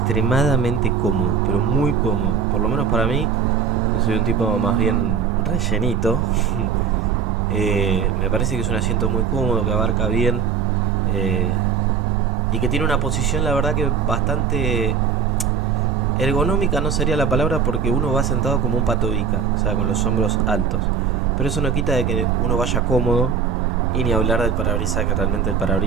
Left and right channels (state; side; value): quieter; left; 6.6 dB